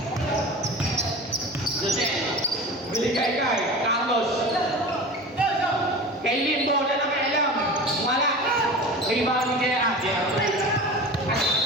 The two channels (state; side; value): normal; both; correlation 0.34